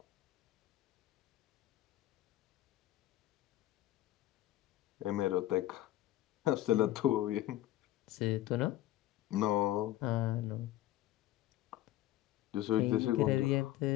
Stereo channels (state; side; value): quieter; right; 14.7 dB